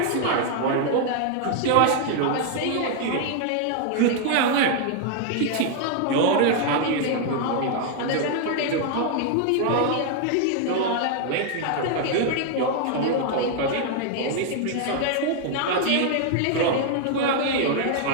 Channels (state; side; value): different; both; correlation 0.00